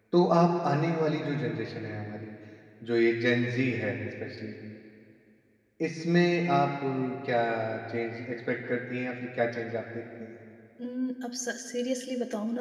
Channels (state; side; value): identical; both; correlation 1.00